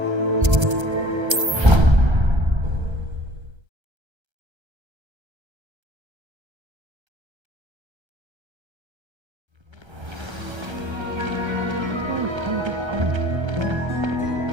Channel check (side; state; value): left; late; 1.3 ms